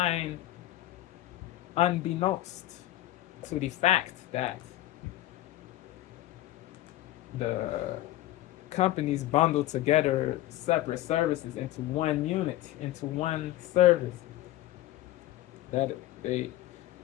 unbeknownst to the fact that the companies bundle together separate services into one unit, into one service. That they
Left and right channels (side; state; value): right; quieter; 15.2 dB